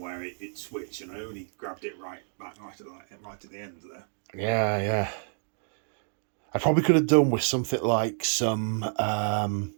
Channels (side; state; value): left; silent; 59 dB below the other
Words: it switched, and I only grabbed it right at the end there. Yeah, yeah. I probably could have done with something like some